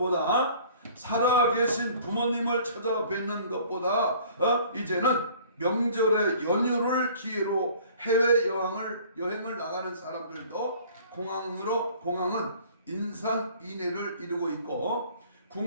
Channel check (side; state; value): both; inverted; correlation -0.52